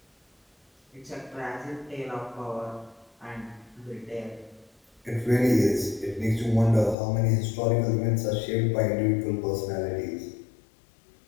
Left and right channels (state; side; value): drops out; right; at 7.0 s